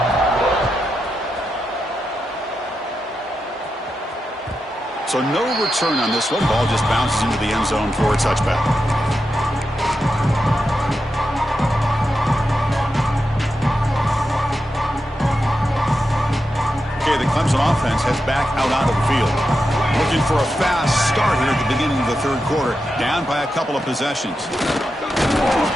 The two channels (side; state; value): both; normal; correlation 0.88